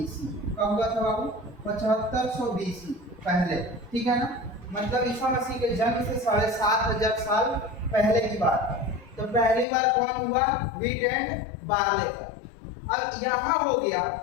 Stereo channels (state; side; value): drops out; right; at 9.7 s